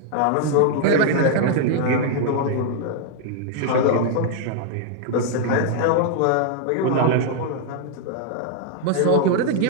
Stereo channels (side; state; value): both; different; correlation 0.00